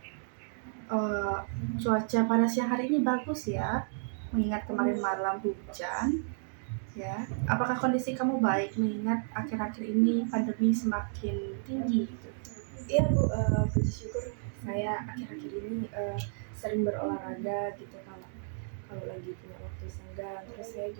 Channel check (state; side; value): silent; left; digital silence